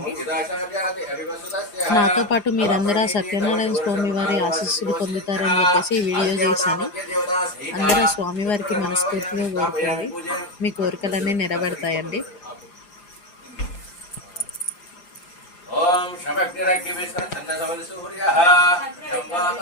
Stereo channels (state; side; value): late; right; 5.8 ms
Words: నాతో పాటు మీరందరూ ఆ సత్యనారాయణ స్వామి వారి ఆశీస్సులు పొందుతారని చెప్పేసి ఈ వీడియో చేశాను. అందరూ స్వామివారికి మనస్ఫూర్తిగా కోరుకోండి, మీ కోరికలన్నీ నెరవేరుతాయండి. ఓం